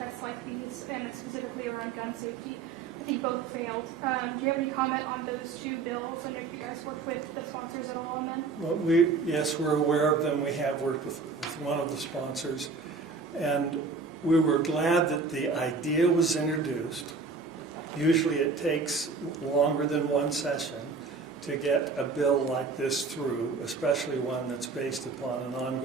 like these, and specifically around gun safety. I think both failed. Do you have any comment on those 2 bills, and if you guys worked with the sponsors at all on them? Well, yes, we're aware of them. We have worked with one of the sponsors, and we were glad that the idea was introduced. Usually it takes longer than one session to get a bill like this through, especially one that's based upon an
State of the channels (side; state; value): left; quieter; 4.4 dB